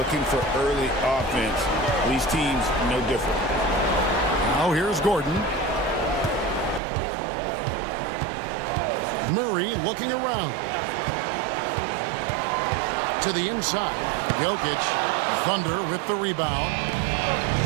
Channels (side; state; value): left; drops out; at 6.8 s